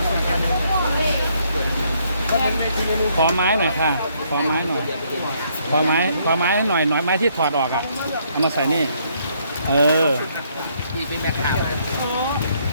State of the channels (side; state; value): both; inverted; correlation -0.70